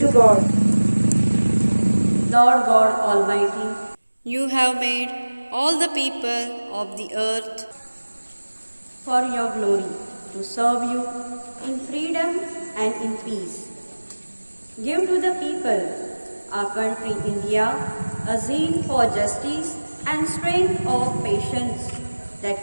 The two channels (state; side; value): inverted; both; correlation -1.00